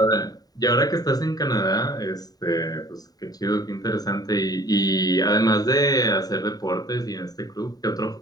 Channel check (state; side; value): late; right; 0.18 ms